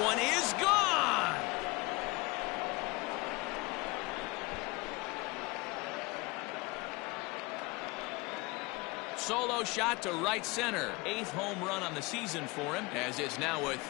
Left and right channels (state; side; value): quieter; right; 24.5 dB